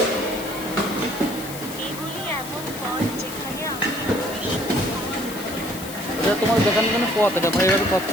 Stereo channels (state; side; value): noise; left; hiss, 12 dB below the sound